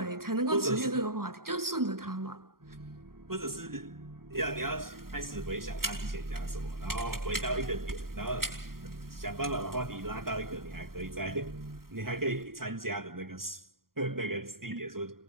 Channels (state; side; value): late; left; 0.92 ms